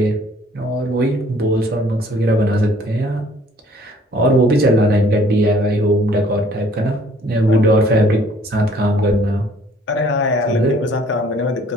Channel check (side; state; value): both; normal; correlation 0.58